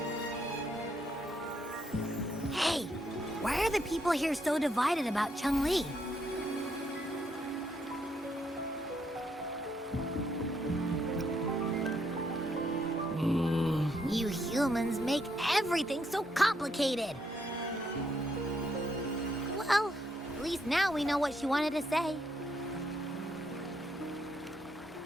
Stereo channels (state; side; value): normal; both; correlation 0.75